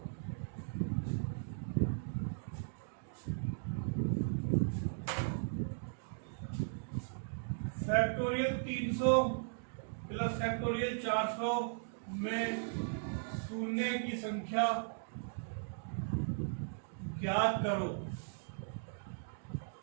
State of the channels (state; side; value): silent; left; digital silence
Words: फैक्टोरियल 300 प्लस फैक्टोरियल 400 में शून्य की संख्या ज्ञात करो।